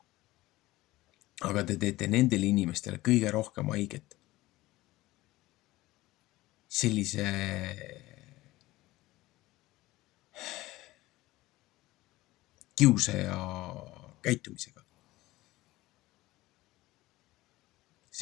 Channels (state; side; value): quieter; right; 18.3 dB